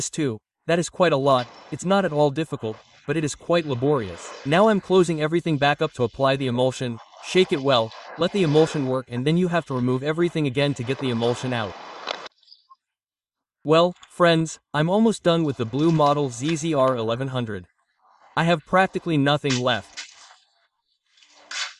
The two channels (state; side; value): identical; both; correlation 1.00